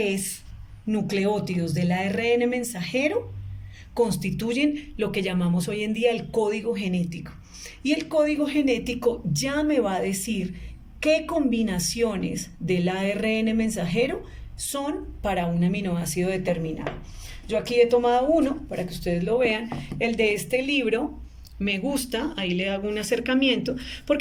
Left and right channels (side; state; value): both; identical; correlation 1.00